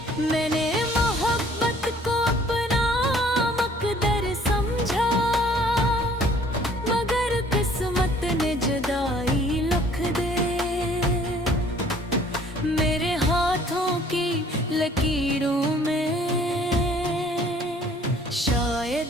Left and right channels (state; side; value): normal; both; correlation 0.56